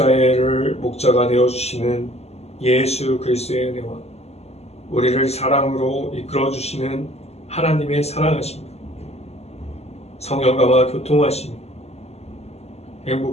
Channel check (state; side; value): late; right; 0.30 ms